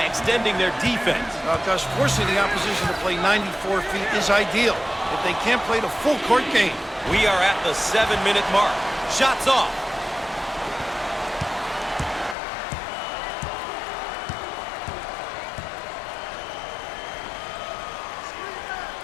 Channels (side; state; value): right; drops out; at 12.4 s